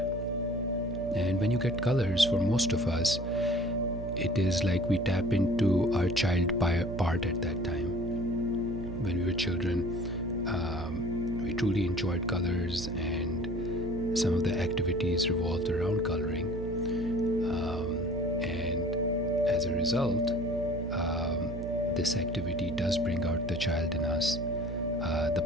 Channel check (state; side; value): noise; right; hum, 8 dB below the sound